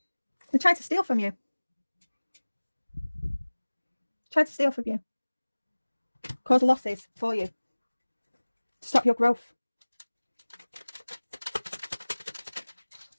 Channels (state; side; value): inverted; both; correlation -1.00